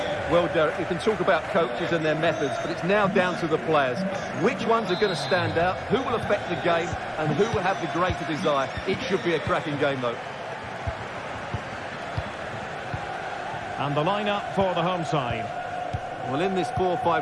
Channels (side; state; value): both; identical; correlation 1.00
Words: Well, Derek, you can talk about coaches and their methods, but it's now down to the players. Which ones are going to stand out, who will affect the game, and who will have the greater desire? It should be a cracking game, though. And the lineup for the home side. Well, in this